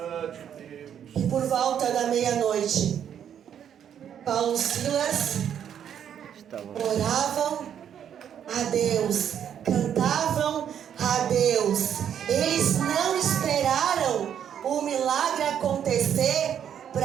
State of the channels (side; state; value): left; quieter; 9.1 dB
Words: que por volta da meia-noite, Paulo e Silas Estavam. oravam a Deus, cantavam a Deus. Eles não esperaram o milagre acontecer